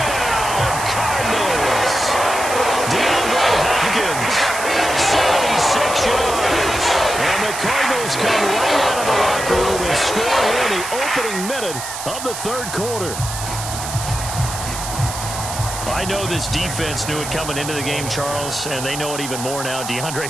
Cardinals. DeAndre Hopkins, 76 yards. And the Cardinals come right out of the locker room and score here in the opening minute of the third quarter. I know this defense knew it coming into the game, Charles, and they know it even more now. DeAndre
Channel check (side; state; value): right; noise; hiss, 8 dB below the sound